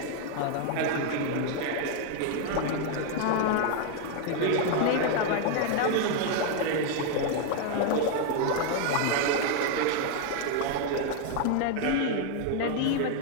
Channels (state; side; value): different; both; correlation 0.00